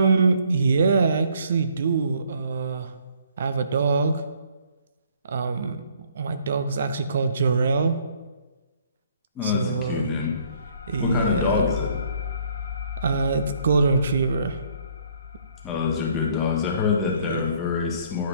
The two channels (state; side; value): inverted; both; correlation -0.62